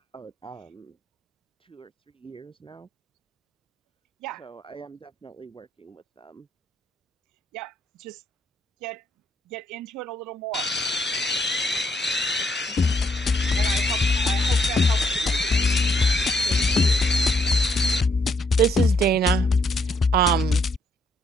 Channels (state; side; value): normal; both; correlation 0.72